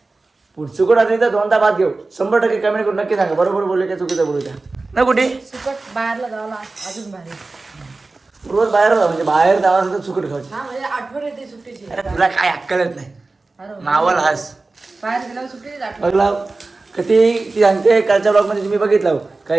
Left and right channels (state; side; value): quieter; left; 3.5 dB